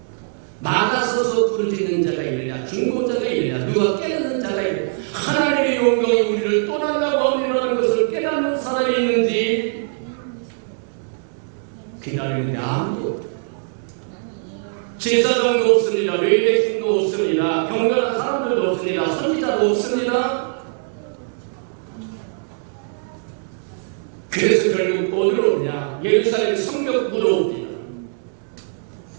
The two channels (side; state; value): left; silent; digital silence